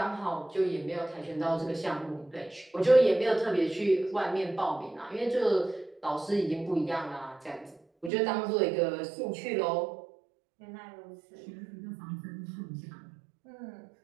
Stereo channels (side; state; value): left; drops out; at 8.1 s